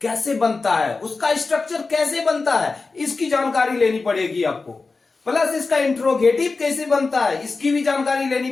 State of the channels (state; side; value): quieter; right; 4.0 dB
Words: कैसे बनता है, उसका स्ट्रक्चर कैसे बनता है, इसकी जानकारी लेनी पड़ेगी आपको। प्लस इसका इंट्रोगेटिव कैसे बनता है, इसकी भी जानकारी लेनी